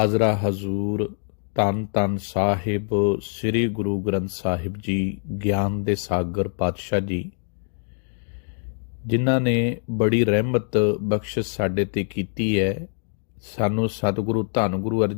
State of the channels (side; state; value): right; silent; digital silence